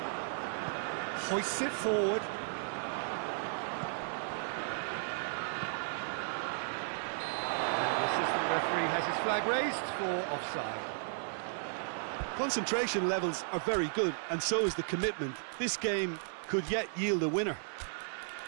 Hoists it forward. And the assistant referee has his flag raised for offside. Concentration levels are very good, and so is the commitment. This game could yet yield a winner.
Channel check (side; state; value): left; silent; 55 dB below the other